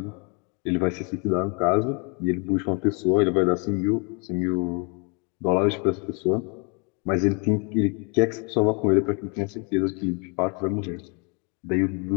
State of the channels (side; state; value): right; quieter; 34.1 dB